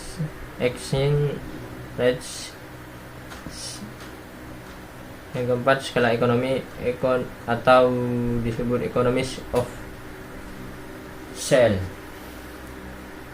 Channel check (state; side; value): identical; both; correlation 1.00